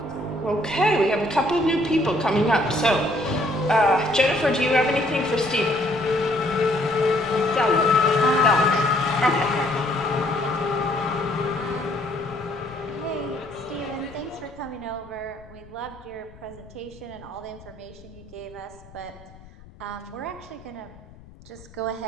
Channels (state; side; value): noise; left; rumble, 21 dB below the sound